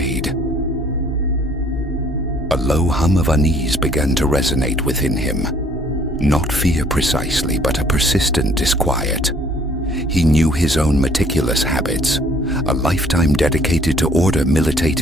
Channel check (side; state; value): both; normal; correlation 0.60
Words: A low hum of unease began to resonate within him. Not fear precisely, but a persistent disquiet. He knew his own meticulous habits. A lifetime dedicated to order